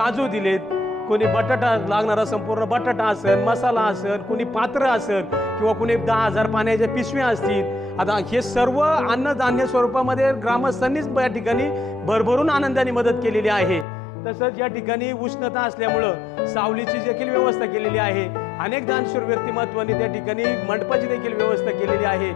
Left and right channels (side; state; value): right; drops out; at 13.9 s